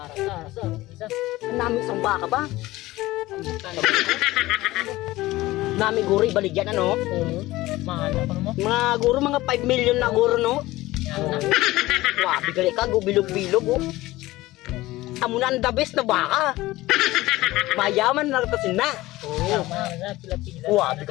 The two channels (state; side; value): quieter; right; 18.2 dB